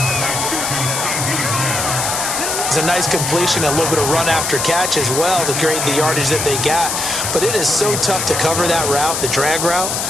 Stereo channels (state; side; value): noise; left; hiss, 2 dB below the sound